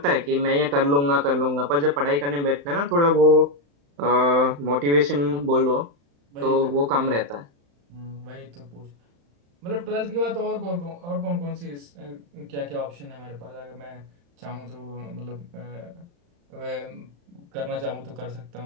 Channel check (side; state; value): left; late; 35 ms